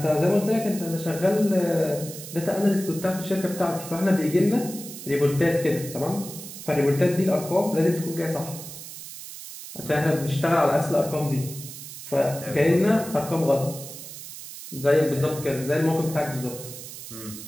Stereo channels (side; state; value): right; noise; hiss, 12 dB below the sound